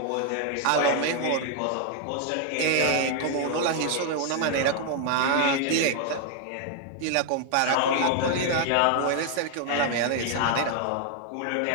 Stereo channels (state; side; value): different; both; correlation 0.00